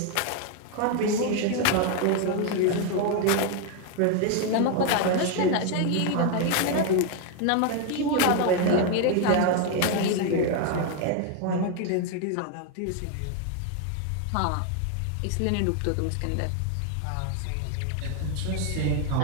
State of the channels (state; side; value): different; both; correlation 0.01